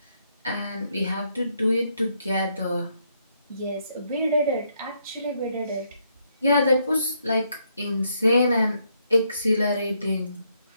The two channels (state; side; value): inverted; both; correlation -0.75